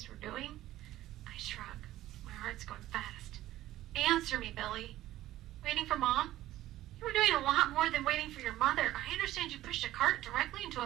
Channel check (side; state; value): left; quieter; 14.7 dB